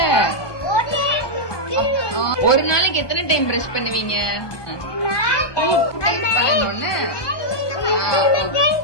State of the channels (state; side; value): late; right; 1.2 ms